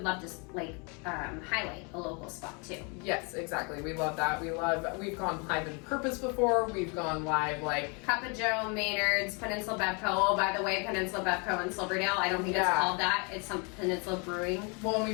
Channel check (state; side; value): quieter; right; 33.2 dB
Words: love to like highlight a local spot too. Yes, exactly. We love that. We've gone live in Purpose before. We've gone live like... Cup of Joe, Maynard's, Peninsula Bevco. Oh, by the way, Peninsula Bevco in Silverdale. I don't think it's called that. It's some Peninsula Brewing. Well, and